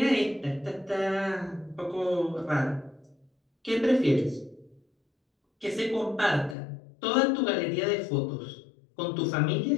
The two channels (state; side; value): drops out; right; at 6.6 s